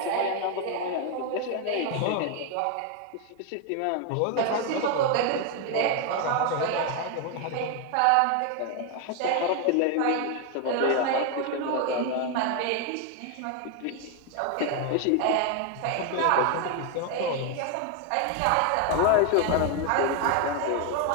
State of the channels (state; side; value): different; both; correlation 0.01